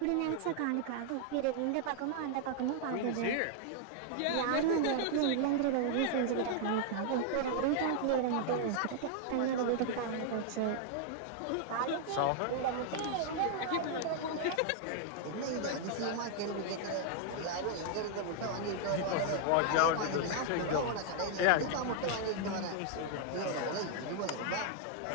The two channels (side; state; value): both; different; correlation 0.00